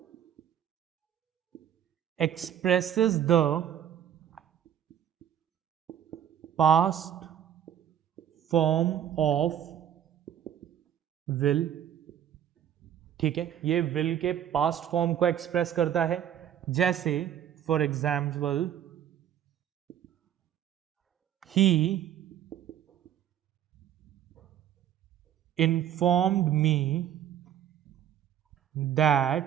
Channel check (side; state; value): left; quieter; 10.0 dB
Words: expresses the past form of will। ठीक है, ये will के past form को एक्सप्रेस करता है। जैसे for example he informed me